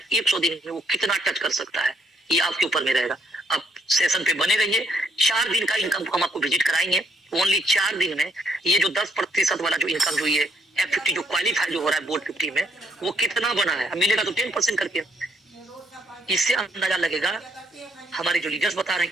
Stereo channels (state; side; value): normal; both; correlation 0.72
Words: 100 दिन में वो कितना टच कर सकता है, ये आपके ऊपर में रहेगा। अब सेशन पे बने रहिए। 4 दिन का इनकम हम आपको विजिट कराएंगे। ओनली 4 दिन में ये जो 10% वाला जो इनकम, जो ये F50 जो क्वालिफाई जो हो रहा है बोर्ड 50 में, वो कितना बना है, मिलेगा तो 10% करके। इससे अंदाजा लगेगा। हमारे जो लीडर्स बता रहे हैं